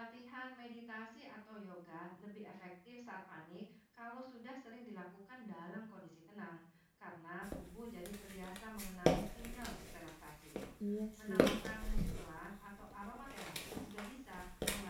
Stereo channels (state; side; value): identical; both; correlation 1.00